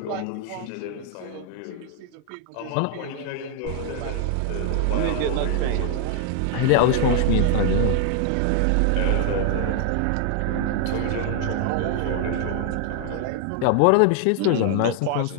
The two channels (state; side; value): different; both; correlation 0.00